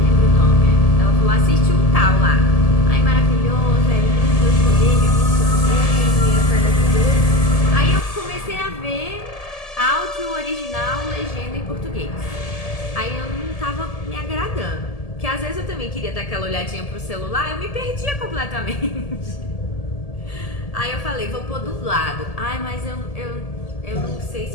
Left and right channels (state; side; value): late; right; 1.7 ms